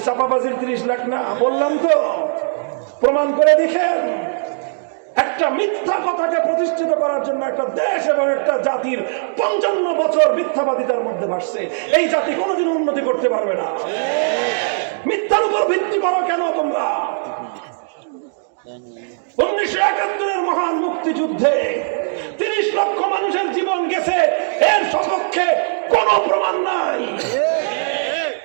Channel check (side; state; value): left; silent; digital silence